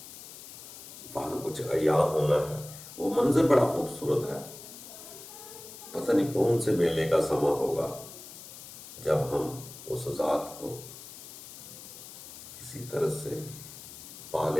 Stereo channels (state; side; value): noise; left; hiss, 14 dB below the sound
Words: وہاں کچھ عیاں ہونا ہے۔ وہ منظر بڑا خوبصورت ہے۔ پتہ نہیں کون سے میلے کا سما ہوگا جب ہم اس ذات کو کسی طرح سے پا